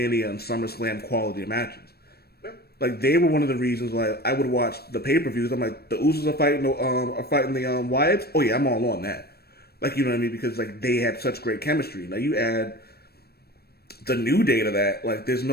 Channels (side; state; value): right; late; 0.46 ms